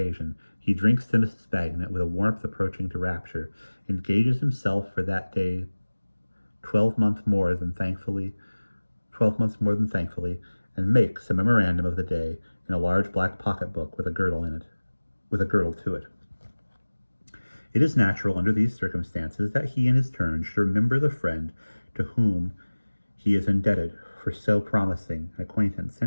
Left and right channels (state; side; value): inverted; both; correlation -1.00